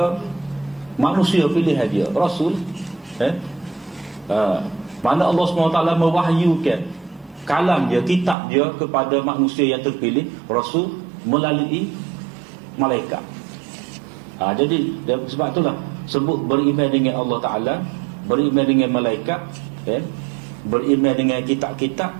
manusia pilihan dia, Rasul. Mana Allah SWT mewahyukan kalam dia, kitab dia kepada manusia yang terpilih, Rasul, melalui malaikat. Jadi sebab itulah sebut beriman dengan Allah Ta'ala, beriman dengan malaikat, beriman dengan kitab-kitab,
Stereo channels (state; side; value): drops out; left; at 8.3 s